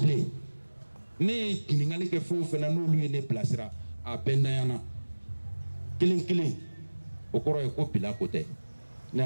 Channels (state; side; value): inverted; both; correlation -1.00